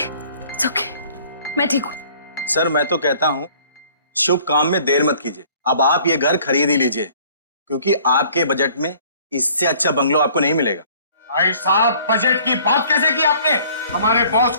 मैं ठीक हूँ। सर मैं तो कहता हूँ शुभ काम में देर मत कीजिए, अब आप ये घर खरीद ही लीजिए, क्योंकि आपके बजट में इससे अच्छा बंगलो आपको नहीं मिलेगा। भाई साहब, बजट की बात कैसे की आपने? हमारे बॉस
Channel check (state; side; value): inverted; both; correlation -0.55